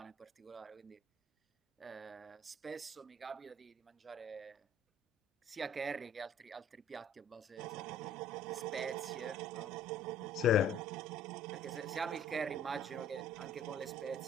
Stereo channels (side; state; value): both; normal; correlation 0.53